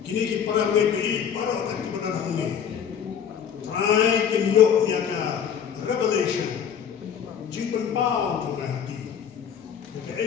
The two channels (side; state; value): right; quieter; 8.1 dB